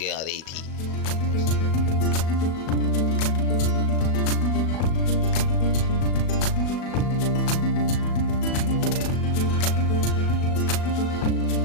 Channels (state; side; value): late; right; 37 ms